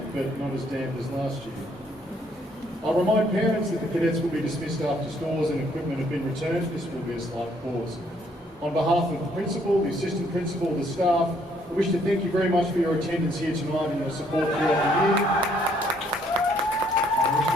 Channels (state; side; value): normal; both; correlation 0.67